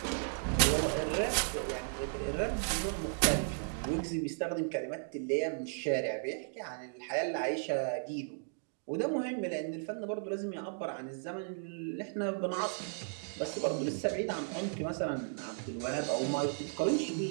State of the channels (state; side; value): silent; left; digital silence